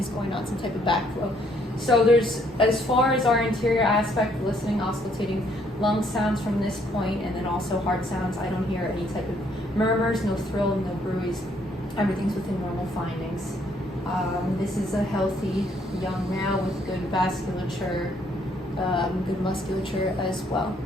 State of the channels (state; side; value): normal; both; correlation 0.68